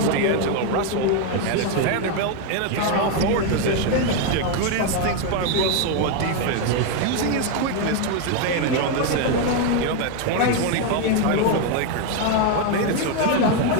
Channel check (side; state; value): both; different; correlation 0.01